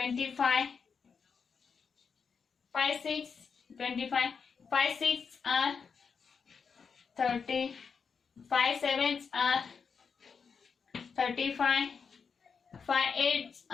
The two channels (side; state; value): right; quieter; 5.8 dB